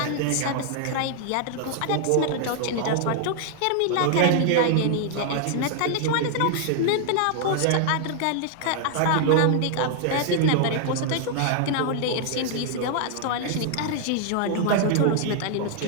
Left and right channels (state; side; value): different; both; correlation 0.00